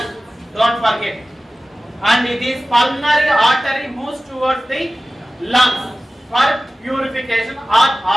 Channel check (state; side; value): normal; both; correlation 0.96